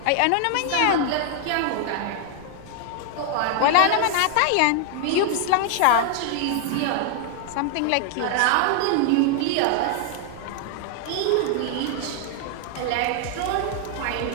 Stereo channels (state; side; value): different; both; correlation 0.00